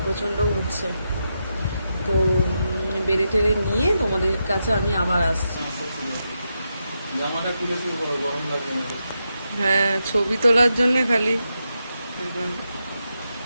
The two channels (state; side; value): inverted; both; correlation -0.86